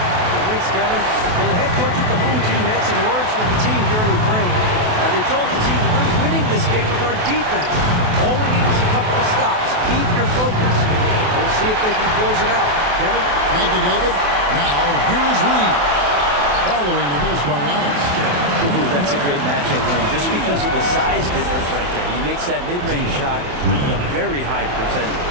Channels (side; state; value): left; late; 28 ms